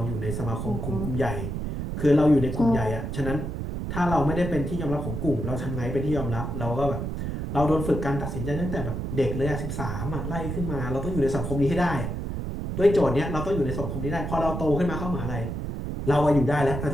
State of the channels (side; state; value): right; noise; rumble, 4 dB below the sound